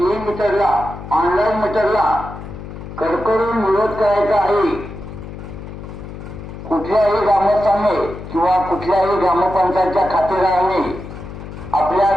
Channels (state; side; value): noise; left; hum, 12 dB below the sound